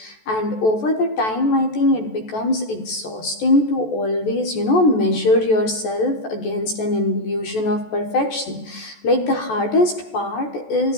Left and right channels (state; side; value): late; right; 14 ms